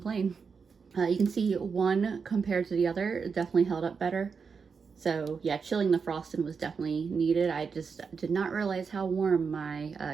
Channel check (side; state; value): left; quieter; 5.6 dB